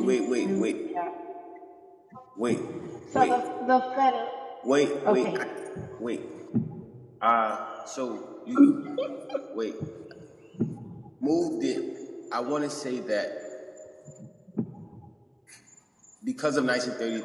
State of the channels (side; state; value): both; identical; correlation 1.00